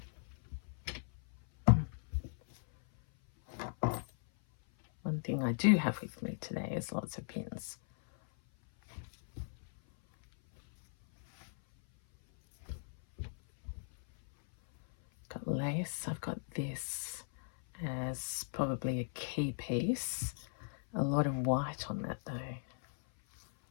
One thing I do have with me today is lots of pins. Got lace. I've got this as probably a key piece. A lot of white on that though.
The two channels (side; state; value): right; silent; 53 dB below the other